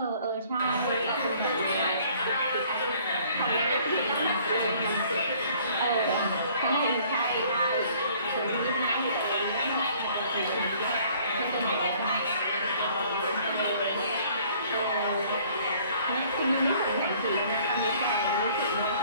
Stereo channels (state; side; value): inverted; both; correlation -0.57